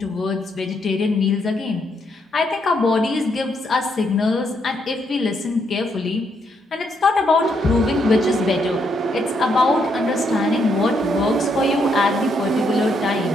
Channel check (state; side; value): normal; both; correlation 0.76